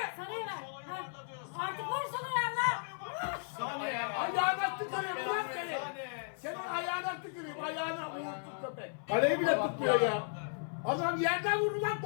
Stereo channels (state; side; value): silent; right; 54 dB below the other